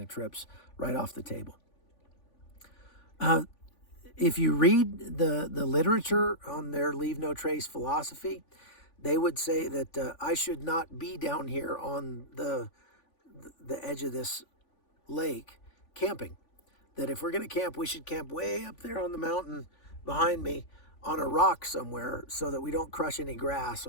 trips right off the table. If you read the literature on their Leave No Trace philosophy, they would say that I should not be down here on the edge of this lake camping. That if we're going to camp, we should camp way up there on the mountain behind me on a rock somewhere so that we don't crush any grass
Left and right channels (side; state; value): right; late; 3.5 ms